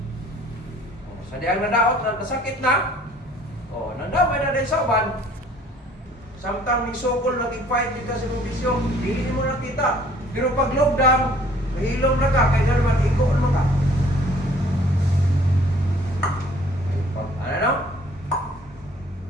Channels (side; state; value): both; normal; correlation 0.56